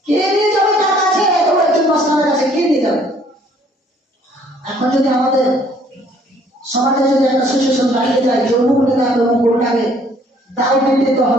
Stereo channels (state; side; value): normal; both; correlation 0.61